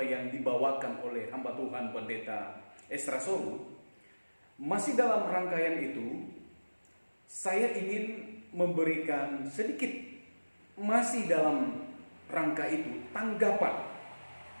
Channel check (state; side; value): inverted; both; correlation -1.00